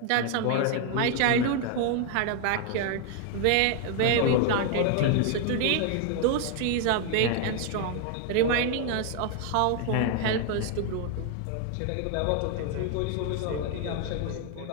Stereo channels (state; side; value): different; both; correlation 0.01